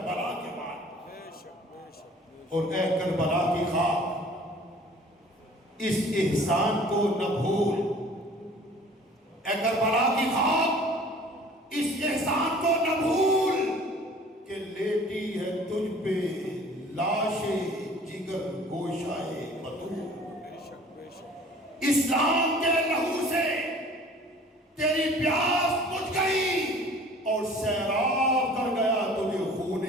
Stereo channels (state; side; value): normal; both; correlation 0.49